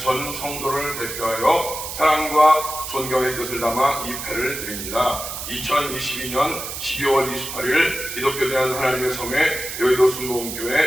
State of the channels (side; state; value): right; noise; hiss, 7 dB below the sound